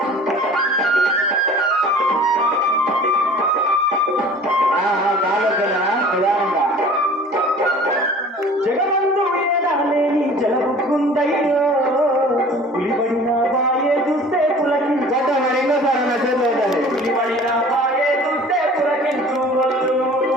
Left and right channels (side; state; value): both; normal; correlation 0.46